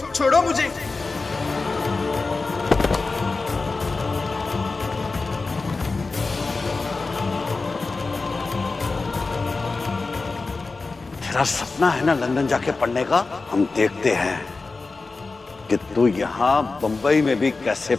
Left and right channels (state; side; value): quieter; right; 3.9 dB